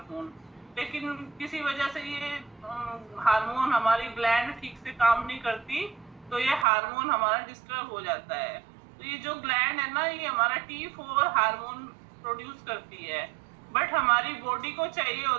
लेकिन किसी वजह से ये हार्मोन, हमारी ग्लैंड ठीक से काम नहीं करती, तो ये हार्मोन हमारा डिस्टर्ब हो जाता है। तो ये जो ग्लैंड है ना, ये हमारा T4 हार्मोन प्रोड्यूस करती है, बट हमारी बॉडी को चाहिए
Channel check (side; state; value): left; drops out; at 6.7 s